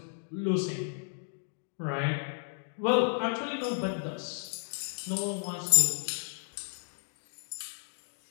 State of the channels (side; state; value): right; silent; 56 dB below the other